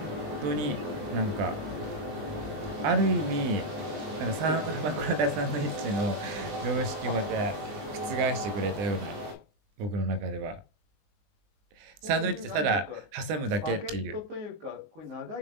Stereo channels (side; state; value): left; late; 19 ms